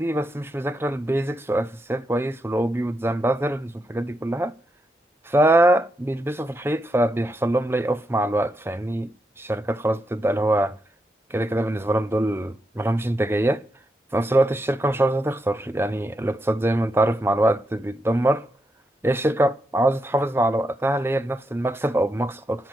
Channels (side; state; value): both; normal; correlation 0.83